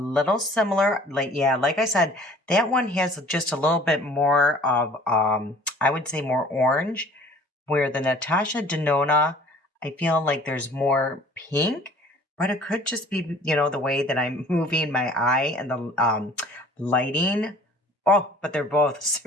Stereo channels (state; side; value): normal; both; correlation 0.50